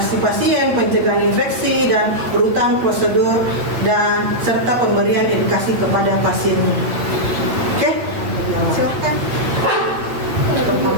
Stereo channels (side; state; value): left; late; 8.7 ms